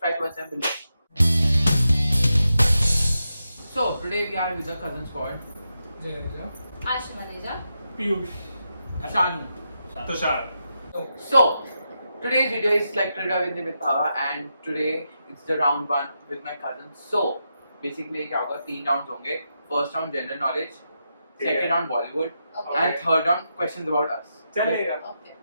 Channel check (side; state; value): both; inverted; correlation -0.86